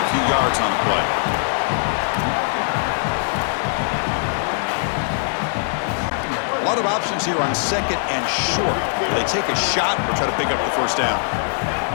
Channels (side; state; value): right; silent; digital silence